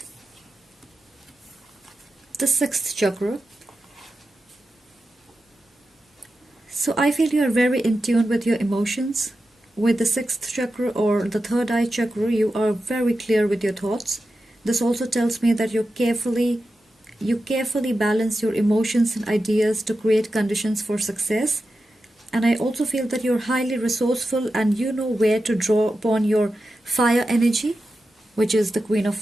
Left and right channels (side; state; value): both; normal; correlation 0.91